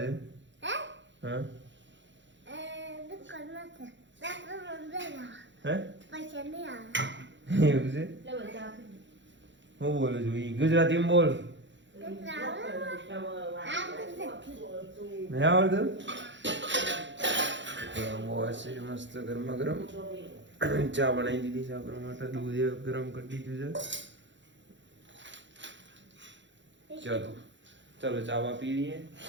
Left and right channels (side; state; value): left; late; 0.54 ms